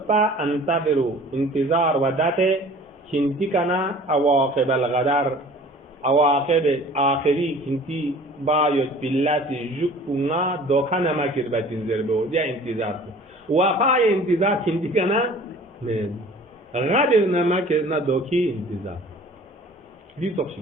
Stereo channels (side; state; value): both; normal; correlation 0.47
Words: انتظروا انتظار وداته كنتي كنا عواقب الغدار عواقب آخري كنتي بايت بالله جوكنا دوكانا ما كربا تنزر بو دي انتظار وخاي انتظار كنتي كنا من غادر نما ke na doki intizar di toksi